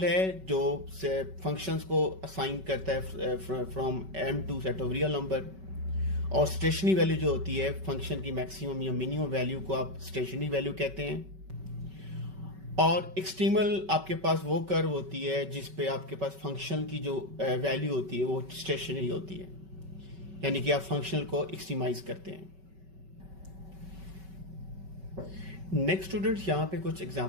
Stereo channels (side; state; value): left; late; 5.3 ms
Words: है जो फंक्शंस को असाइन करता है from M to set of real number. और स्टेशनरी वैल्यू जो होती है फंक्शन की मैक्सिमम या मिनिमम वैल्यू को आप स्टेशनरी वैल्यू कहते हैं। और एक्सट्रीमल आपके पास वो कर्व होती है जिस पे आपके पास फंक्शन की जो वैल्यू होती है वो स्टेशनरी होती है, यानी कि आप फंक्शनल को एक्सट्रीमाइज करते हैं। नेक्स्ट स्टूडेंट्स, यहाँ पे कुछ